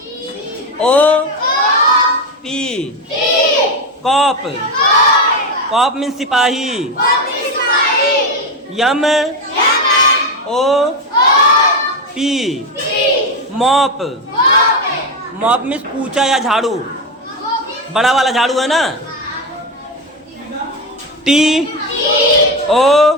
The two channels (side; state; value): both; normal; correlation 0.13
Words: cop, cop means सिपाही। MOP मॉप, मॉप मीन्स पूछा या झाड़ू, बड़ा वाला झाड़ू है ना। TOP